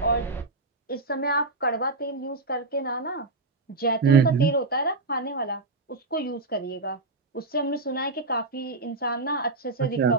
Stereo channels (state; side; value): quieter; left; 3.3 dB